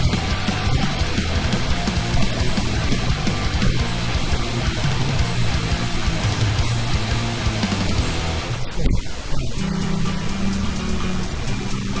Now it's not, and I think that's a lot better. You don't get people trying to fit in or anything. It's a lot more raw, energetic, and there's still very much entrenched in politics, and people are still getting very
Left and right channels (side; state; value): both; identical; correlation 1.00